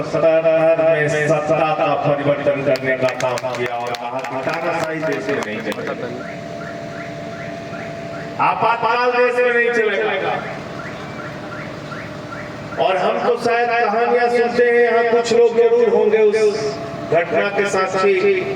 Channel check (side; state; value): both; identical; correlation 1.00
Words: में सत्ता का परिवर्तन करने का काम किया और कहा कि तानाशाही देश में नहीं चलेगा, आपातकाल देश में नहीं चलेगा। और हम तो शायद कहानियां सुनते हैं, यहाँ कुछ लोग जरूर होंगे उस घटना के साक्षी,